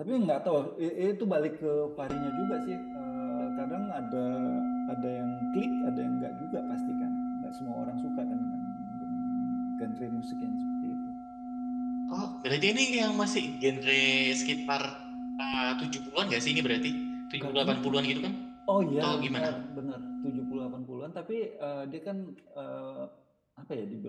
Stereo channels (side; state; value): both; identical; correlation 1.00